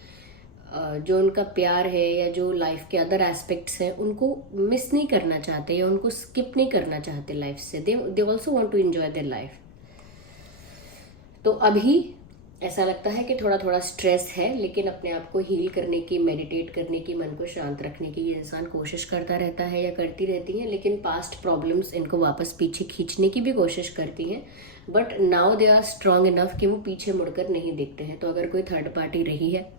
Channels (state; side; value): noise; left; rumble, 22 dB below the sound